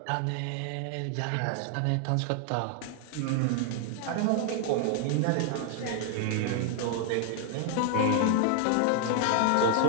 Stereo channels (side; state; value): both; different; correlation 0.00